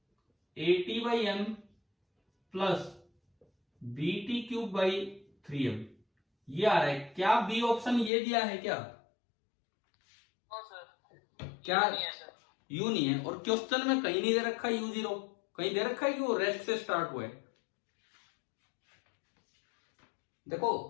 a t by m plus b t cube by 3m, ये आ रहा है। क्या बी ऑप्शन ये दिया है क्या? नो सर, क्या नहीं है सर। u नहीं है? और क्वेश्चन में कहीं नहीं दे रखा है u0, कहीं दे रखा है कि वो रेस्ट से स्टार्ट हुआ है। देखो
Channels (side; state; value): right; drops out; at 8.1 s